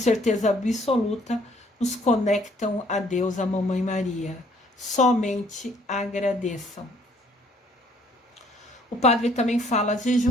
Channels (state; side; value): normal; both; correlation 0.62